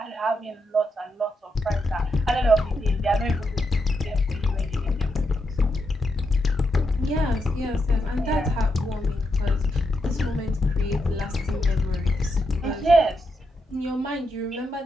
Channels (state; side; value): normal; both; correlation 0.83